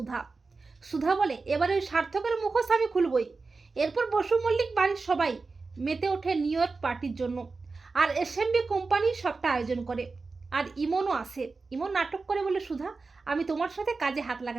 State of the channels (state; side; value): quieter; left; 4.1 dB